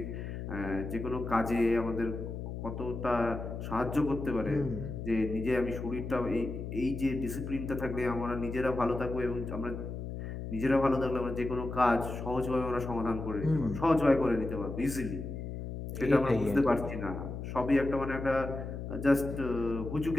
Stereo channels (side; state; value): left; noise; hum, 7 dB below the sound